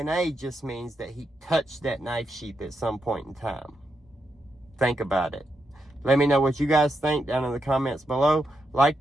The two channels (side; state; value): both; normal; correlation 0.83